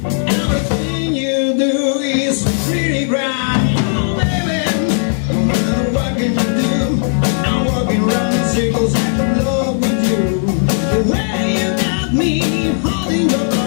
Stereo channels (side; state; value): right; silent; digital silence